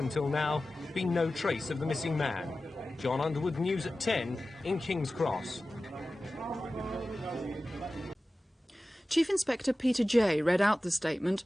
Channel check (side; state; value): both; normal; correlation 0.95